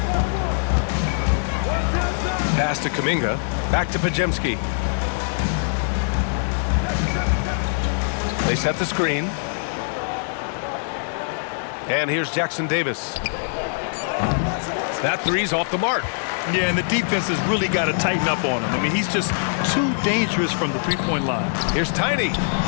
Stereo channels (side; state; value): right; silent; 64 dB below the other